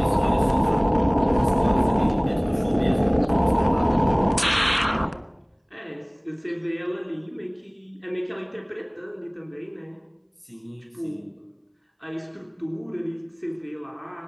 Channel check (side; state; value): both; identical; correlation 1.00